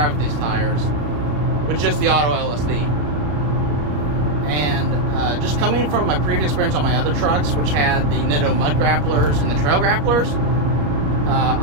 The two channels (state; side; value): late; left; 33 ms